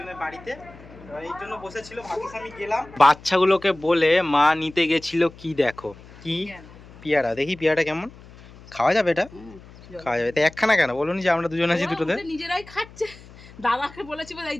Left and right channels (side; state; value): left; noise; hum, 21 dB below the sound